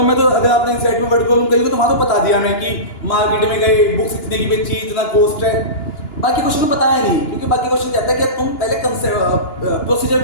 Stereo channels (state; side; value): late; right; 2.9 ms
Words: में तो अगर आपने इस साइड में वर्ड कॉलम करी तो वहां तो बता दिया मैं कि मार्केट में गए, बुक्स इतने की बेची, इतना कॉस्ट है। बाकी क्वेश्चन में बताया नहीं, क्योंकि बाकी क्वेश्चन कहता है कि तुम पहले प्रोसीजर